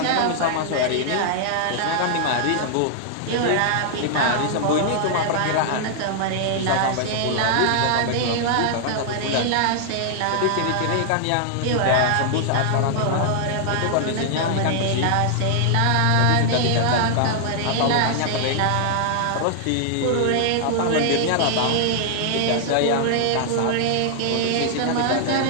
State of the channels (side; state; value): both; different; correlation -0.01